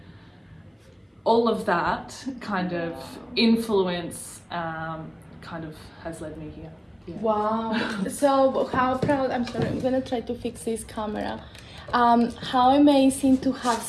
all of that kind of influence kind of has led me here. Yeah. Wow. So how proud, I'm sorry, I'm gonna try to fix this camera. How amazing to have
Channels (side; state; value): both; identical; correlation 1.00